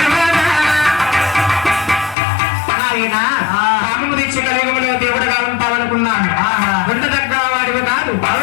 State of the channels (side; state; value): right; drops out; at 2.1 s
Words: నాయన కామము దీక్ష కలియుగంలో దేవుడుగా ఉంటావనుకున్నాను. ఉండదగ్గ వాడివి కాదు.